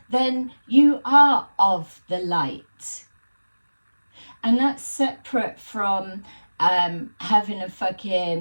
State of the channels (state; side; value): inverted; both; correlation -1.00